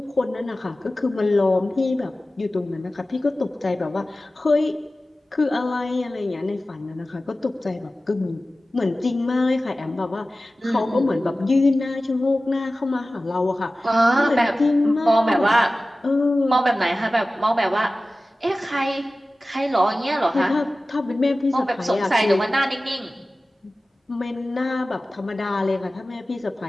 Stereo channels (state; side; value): normal; both; correlation 0.96